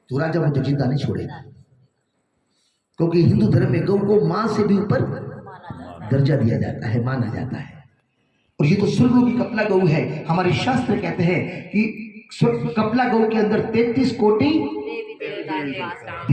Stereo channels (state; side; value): identical; both; correlation 1.00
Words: तो राजा मुझे जिंदा नहीं छोड़ेगा, क्योंकि हिंदू धर्म में गौ को मां से भी ऊपर दर्जा दिया जाता है, माना जाता है। और ये तो स्वर्गलोकी कपला गौ है। हमारे शास्त्र कहते हैं कि कपला गौ के अंदर 33 कोटि